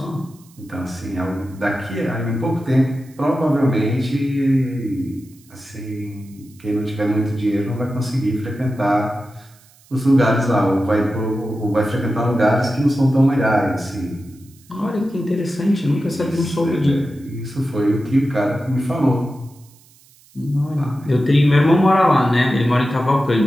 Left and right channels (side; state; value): right; noise; hiss, 28 dB below the sound